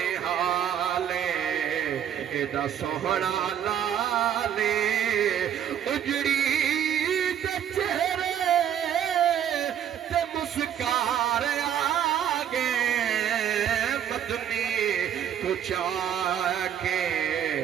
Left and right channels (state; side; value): quieter; left; 9.6 dB